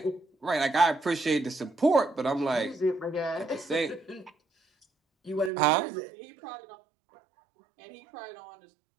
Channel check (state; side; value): drops out; left; at 5.5 s